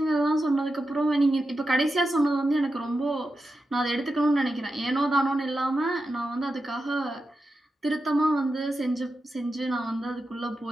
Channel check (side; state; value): both; normal; correlation 0.90